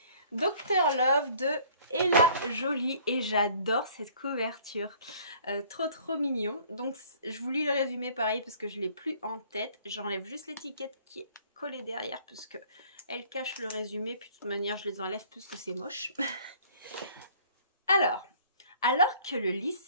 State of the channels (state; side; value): inverted; both; correlation -0.55